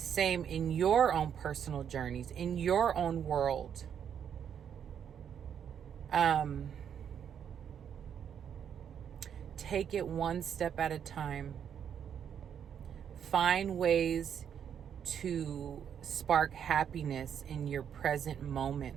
in your own personal journeys, in your own world. Take it one step at a time. Find ways to spark happiness in your present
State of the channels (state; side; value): quieter; left; 8.4 dB